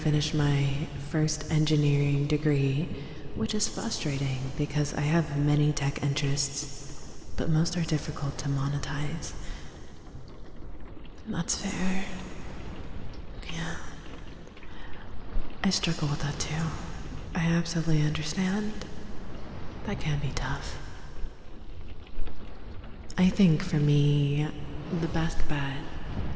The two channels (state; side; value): identical; both; correlation 1.00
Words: my first engineering degree, which is frustrating because I have many tech interests, but most are difficult to monetize. That's fair. Yeah. I struggle with that too. I absolutely understand. That can be tough. I think for me, the best bet,